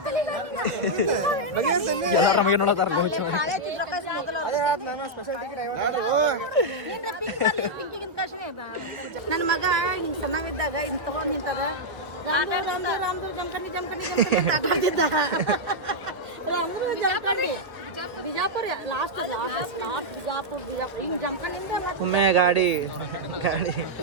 ಎಲ್ಲಾರ ನಮಗೆ ನೋಡತ್ತಾರ. ಅದೇ ನಾನು ಸ್ಪೆಷಲ್ ಟಿಕೆಟ್ 50 ನನ್ನ ಮಗ ಹಿಂಗ್ ಸಣ್ಣವಿದ್ದಾಗ ಹಿಂಗ್ ತಗೊಂಡ್ ನಿಂತದ ರಾಮ್ದು ಜಮಖಂಡಿ ಬಿಜಾಪುರ ಲಾಸ್ಟ್ ಬಿಜಾಪುರ ಹಿಂಗ್ ಜಮಖಂಡಿಂದ ಮತ್ತೆ ಒಮ್ಮೆ ಗಾಡಿ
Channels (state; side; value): late; left; 1.8 ms